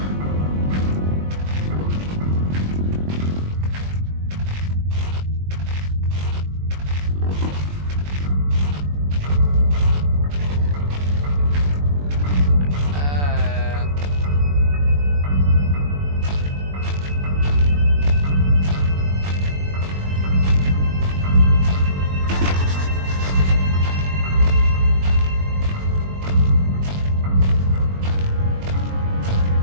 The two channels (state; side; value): late; left; 21 ms